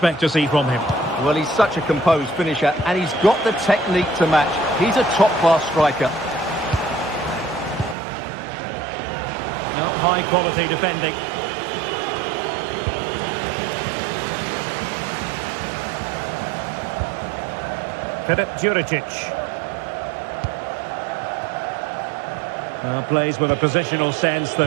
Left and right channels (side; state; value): left; drops out; at 8.0 s